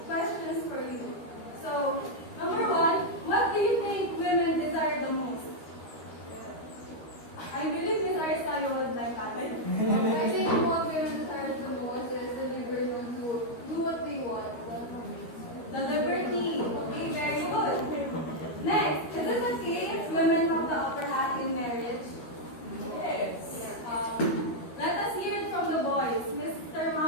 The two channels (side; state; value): right; late; 13 ms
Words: questions for you. So, number one, what do you think women desire the most? I believe Miss Aristeo would like that. I think what women desire the most is the liberty to do what they want. The liberty. Okay, very good. Next, is it okay if women have the upper hand in marriage? Yes. Let us hear it from the boys. Mr.